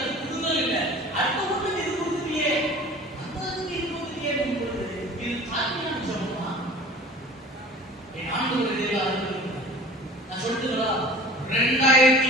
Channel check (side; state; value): both; normal; correlation 0.43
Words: அது கொடுக்கவே இல்லை. அடுத்த ஒன்று இது கொடுத்துட்டியே, அந்த இது கொடுத்துட்டியே பொழுது இது தாழ்மையான சொல்லுமா? என் ஆண்டவர் நான் சொல்லிட்டுங்களா,